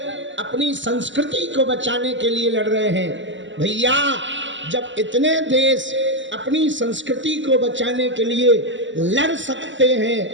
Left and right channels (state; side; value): late; left; 0.54 ms